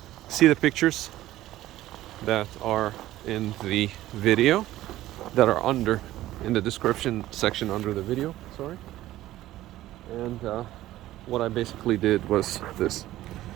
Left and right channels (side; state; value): left; quieter; 15.1 dB